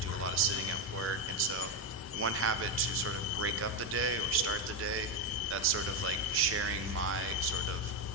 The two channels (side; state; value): both; normal; correlation 0.08